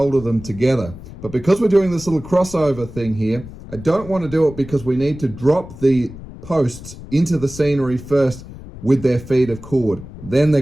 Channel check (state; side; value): noise; left; rumble, 15 dB below the sound